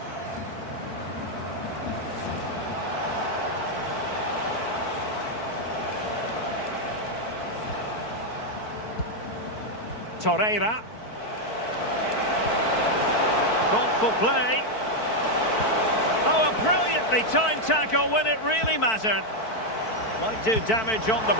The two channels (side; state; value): right; late; 4.5 ms